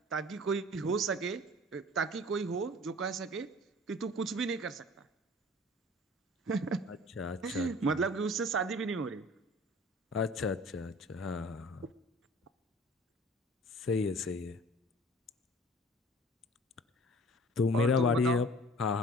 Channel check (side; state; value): both; normal; correlation 0.47